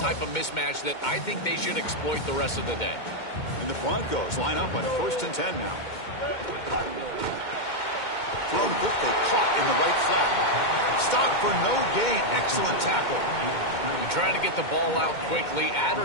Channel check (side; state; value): right; late; 2.2 ms